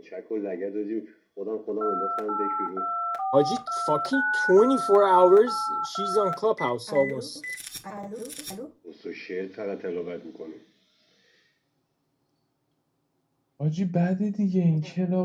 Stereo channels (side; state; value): both; identical; correlation 1.00